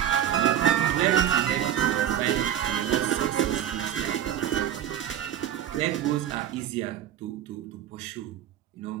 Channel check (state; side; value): quieter; left; 10.6 dB